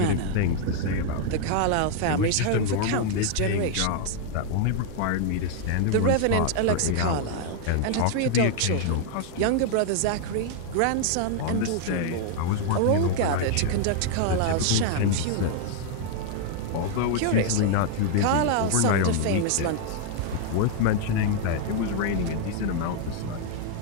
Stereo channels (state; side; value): different; both; correlation 0.00